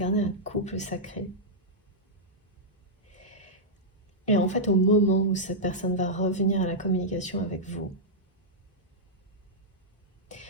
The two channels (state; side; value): normal; both; correlation -0.09